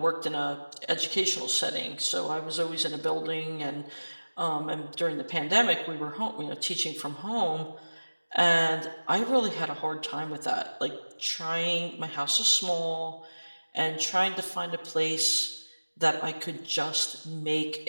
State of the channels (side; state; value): both; inverted; correlation -1.00